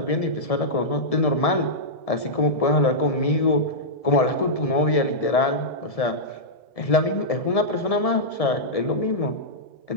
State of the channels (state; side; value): late; right; 1.7 ms